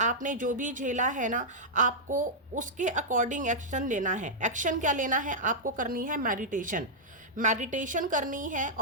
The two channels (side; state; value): both; normal; correlation -0.08